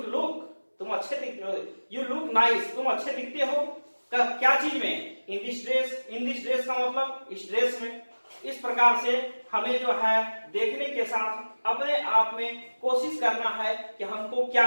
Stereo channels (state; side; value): inverted; both; correlation -1.00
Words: लुक तुम अच्छे दिखते हो, यू लुक नाइस तुम अच्छे दिखते हो, क्या चीज में, इन दिस ड्रेस का मतलब इस ड्रेस में। इस प्रकार से हमें जो है देखने के साथ अपने आप में कोशिश करना है कि हमको क्या